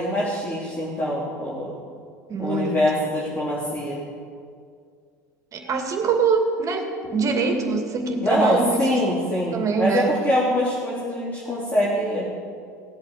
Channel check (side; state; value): both; normal; correlation 0.55